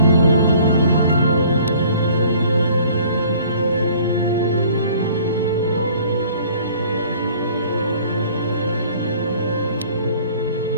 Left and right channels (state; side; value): inverted; both; correlation -0.53